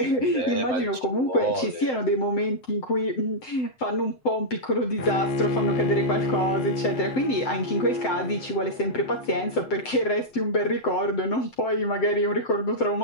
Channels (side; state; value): right; late; 7.8 ms